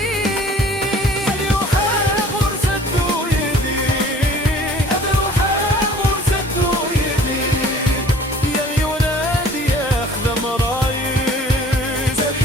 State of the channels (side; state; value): both; normal; correlation 0.50